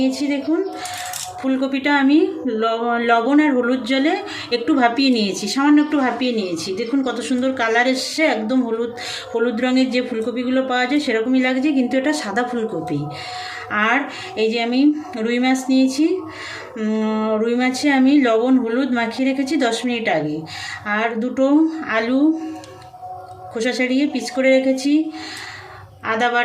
দেখুন। ফুলকপিটা আমি লবণ আর হলুদ জলে একটু ভাপিয়ে নিয়েছি, সামান্য একটু ভাপিয়ে নিয়েছি। দেখুন কত সুন্দর কালার এসছে, একদম হলুদ রঙের যে ফুলকপিগুলো পাওয়া যায় সেরকমই লাগছে, কিন্তু এটা সাদা ফুলকপি। আর এই যে আমি রুই মাছ নিয়েছি, রুই মাছে আমি লবণ হলুদ মাখিয়ে রেখেছি 10 মিনিট আগে। আর দুটো আলু খোসা ছাড়িয়ে পিস করে রেখেছি। আদা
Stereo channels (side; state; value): both; identical; correlation 1.00